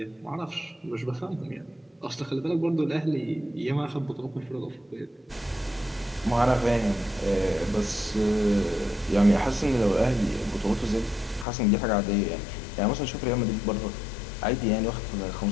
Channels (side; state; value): right; drops out; at 11.5 s